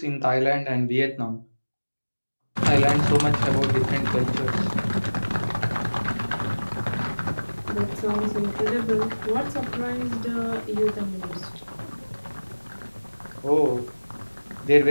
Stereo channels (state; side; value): inverted; both; correlation -1.00